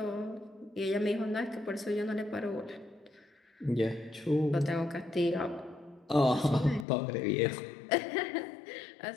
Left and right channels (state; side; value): drops out; right; at 6.9 s